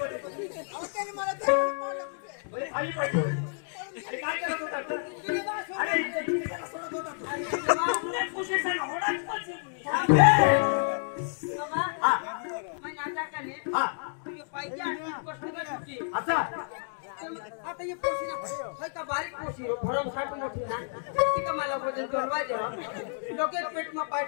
होते? खाली पाहिजे अरे काय करत होता? अरे सोडत होता आता ये पोशी ना होय का बारीक पोशी भरम साठ मोठी ना ती का मला वजन जोडवा दे लोके पेट में पाय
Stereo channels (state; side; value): silent; right; digital silence